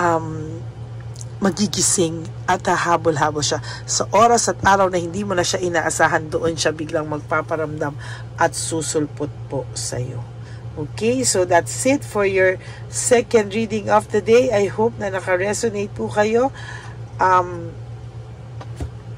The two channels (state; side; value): identical; both; correlation 1.00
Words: magigising at hahabol-habol siya. Sa oras at araw na hindi mo na siya inaasahan, doon siya biglang magpaparamdam at susulpot po sa'yo. Okay, so that's it for your second reading of the day. I hope na naka-resonate po kayo.